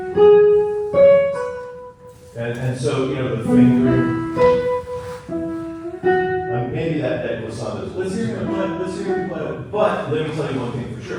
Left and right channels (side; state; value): both; identical; correlation 1.00